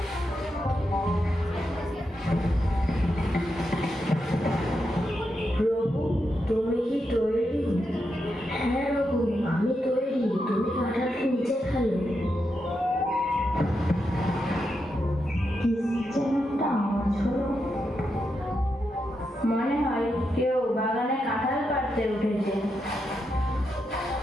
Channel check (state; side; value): normal; both; correlation 0.85